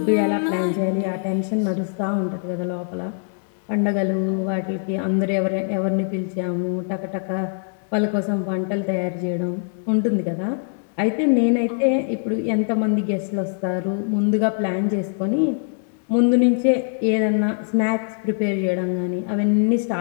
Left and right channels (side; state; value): right; silent; digital silence